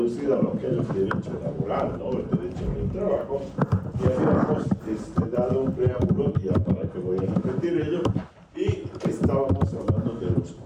a lo que es el derecho laboral, ¿no? El derecho del trabajo, y habíamos dado un preámbulo, ya para que voy a repetir ello, y estábamos hablando de los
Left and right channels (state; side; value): identical; both; correlation 1.00